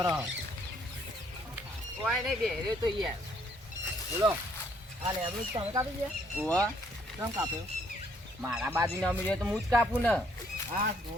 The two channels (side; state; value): both; normal; correlation 0.67